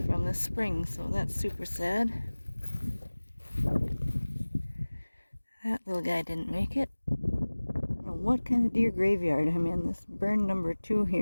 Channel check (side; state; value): both; inverted; correlation -1.00